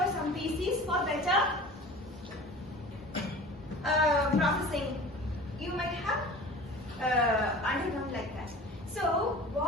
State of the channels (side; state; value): both; normal; correlation 0.40